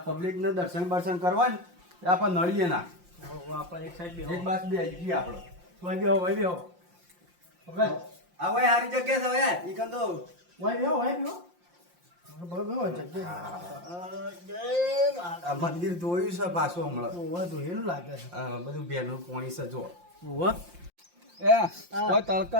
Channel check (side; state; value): left; late; 5.7 ms